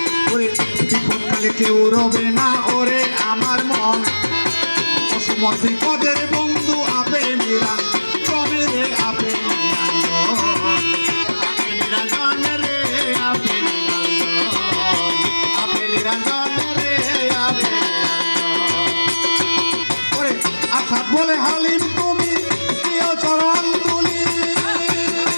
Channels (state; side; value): inverted; both; correlation -1.00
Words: বিপদকালে কেউ রবে না ওরে আমার মন অসময় বিপদ